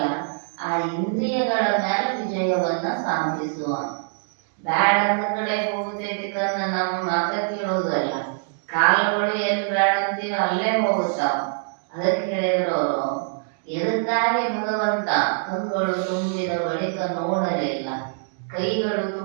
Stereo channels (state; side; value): silent; left; digital silence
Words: ಆ ಇಂದ್ರಿಯಗಳ ಮೇಲೆ ವಿಜಯವನ್ನ ಸಾಧಿಸುವ. ಬ್ಯಾಡ ಅಂತ ಕಡೆ ಹೋಗುತ್ತೈತಿ ಕನ್ನ ನಮ್ಮ ಮಾತ ಕೇಳೋದಲ್ಲ, ಕಾಲುಗಳು ಎಲ್ಲಿ ಬ್ಯಾಡ ಅಂತೀವಿ ಅಲ್ಲೇ ಹೋಗುತ್ತಾವ. ಅದಕ್ಕೆ ಹೇಳಿದ್ರು ಅವರು, ಎದಕ್ಕಾಗಿ ಭಗವಂತ ಕಣ್ಗಳು ತುಂಬಿದ ಬಳಿಕ ನೋಡಲಿಲ್ಲ, ಕೈಗಳು